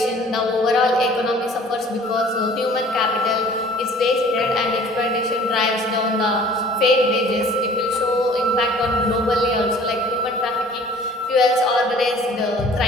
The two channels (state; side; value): normal; both; correlation 0.50